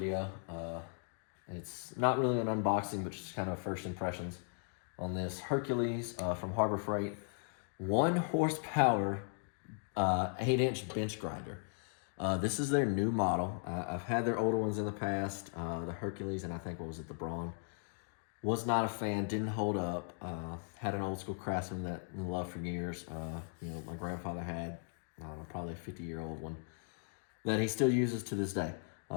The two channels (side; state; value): right; silent; 53 dB below the other